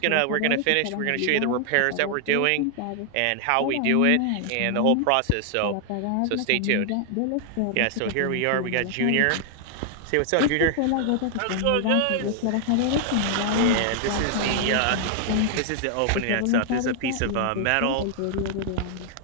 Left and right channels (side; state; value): both; different; correlation 0.00